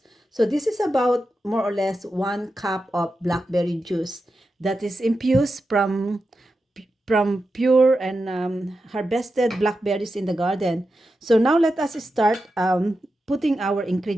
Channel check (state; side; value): normal; both; correlation 0.90